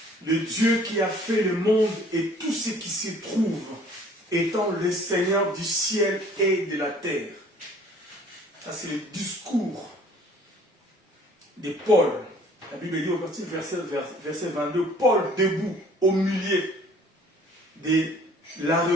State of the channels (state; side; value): normal; both; correlation 0.54